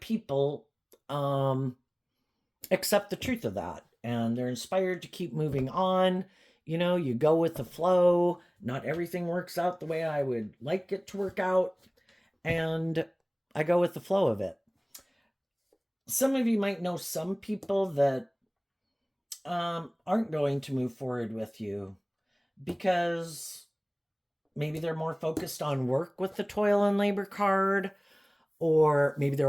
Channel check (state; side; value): identical; both; correlation 1.00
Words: accept the truth of that. And they're inspired to keep moving on. You go with the flow. Not everything works out the way I would like it to work out. And I go with the flow of it. Some of you might know some people that aren't going to move forward with you because maybe they're more focused on work with the toil and labor card, or maybe